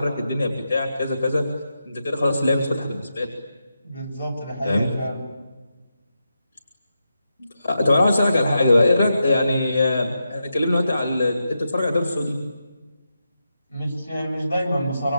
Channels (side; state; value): both; inverted; correlation -0.87